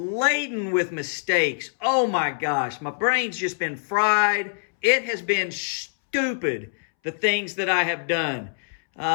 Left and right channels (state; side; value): silent; right; 62 dB below the other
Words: with mistakes. Oh my gosh, my brain's just been fried. It has been stupid, the things that I have done.